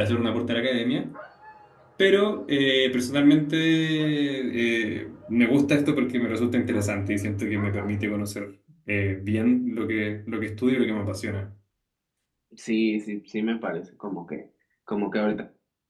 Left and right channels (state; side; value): identical; both; correlation 1.00